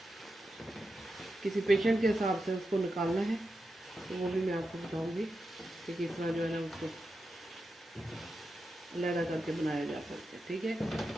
किसी पेशेंट के हिसाब से उसको निकालना है तो वो भी मैं आपको बताऊंगी कि किस तरह जो है ना उसको लहरा करके बनाया जा सकता है, ठीक है।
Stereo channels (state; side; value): normal; both; correlation 0.89